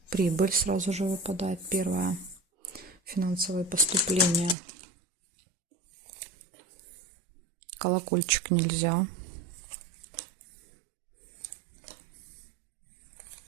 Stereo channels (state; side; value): drops out; left; at 4.5 s